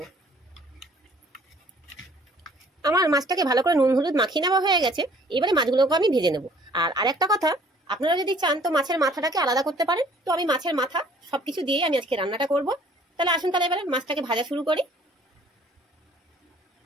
আমার মাছটাকে ভালো করে নুন হলুদ মাখিয়ে নেওয়া হয়ে গেছে। এবারে মাছগুলোকে আমি ভেজে নেব। আর আরেকটা কথা, আপনারা যদি চান তো মাছের মাথাটাকে আলাদা করতে পারেন। তো আমি মাছের মাথা সবকিছু দিয়ে আমি আজকে রান্নাটা করব। তাহলে আসুন তাহলে এবারে মাছটাকে ভাজা শুরু করি।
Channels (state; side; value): normal; both; correlation 0.56